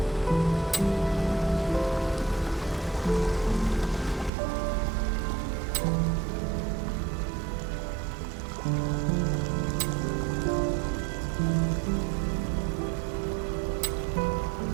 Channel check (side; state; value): left; drops out; at 4.3 s